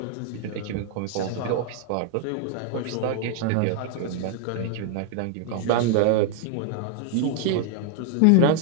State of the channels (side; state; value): both; different; correlation 0.00